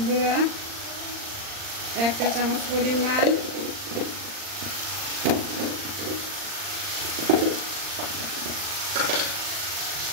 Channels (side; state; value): left; late; 39 ms